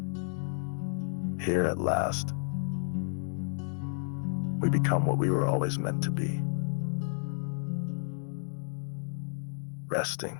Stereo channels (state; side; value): silent; right; digital silence